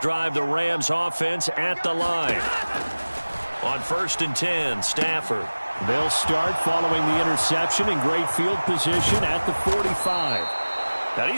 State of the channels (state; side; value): inverted; both; correlation -1.00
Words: drive, the Rams offense at the line. On 1st and 10, Stafford. They'll start following the interception in great field position at the 45. Now